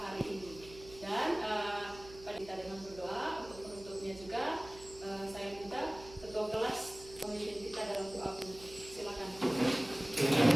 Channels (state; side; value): noise; right; hum, 18 dB below the sound